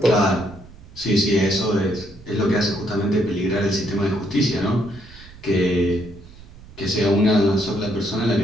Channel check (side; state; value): right; noise; rumble, 20 dB below the sound